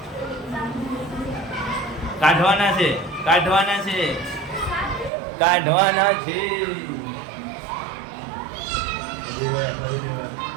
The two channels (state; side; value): drops out; left; at 5.1 s